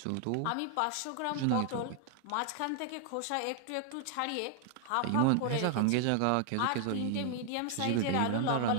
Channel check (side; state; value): both; different; correlation 0.00